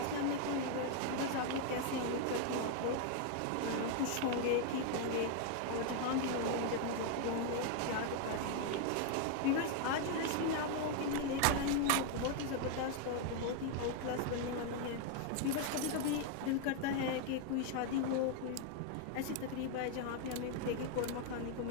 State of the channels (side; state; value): both; different; correlation 0.00